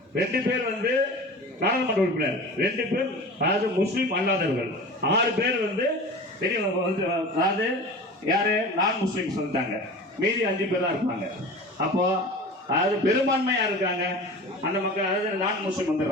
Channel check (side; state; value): both; normal; correlation 0.35